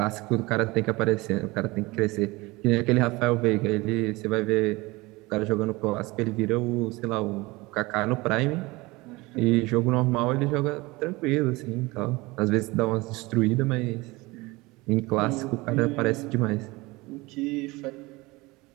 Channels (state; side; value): quieter; left; 22.5 dB